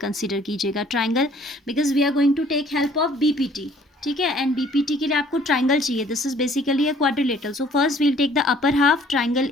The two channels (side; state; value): both; normal; correlation 0.58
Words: कीजिएगा, triangle, because we are going to take help of BPT. ठीक है, and BPT के लिए आपको ट्राइंगल चाहिए. This is basically a quadrilateral. So first we will take the upper half triangle